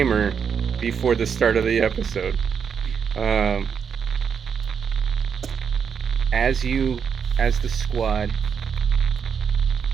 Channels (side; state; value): left; quieter; 6.8 dB